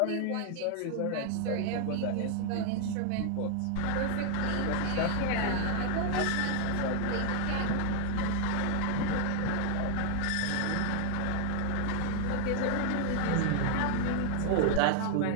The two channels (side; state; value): both; different; correlation 0.00